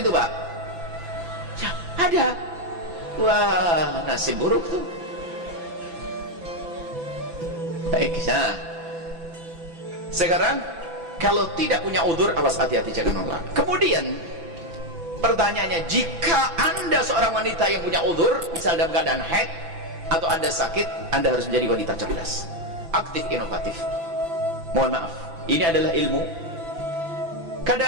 Pak? Ya, ada. Wah, nasib buruk tuh. Baik, nah sekarang kalau tidak punya udzur, awas, hati-hati, jangan nolak. Kemudian pertanyaannya, jika Anda seorang wanita yang punya udzur, misal dalam keadaan haid atau Anda sakit, Anda harus menjadi wanita cerdas, aktif, inovatif. Mohon maaf, ini adalah ilmu.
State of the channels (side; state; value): left; late; 6.0 ms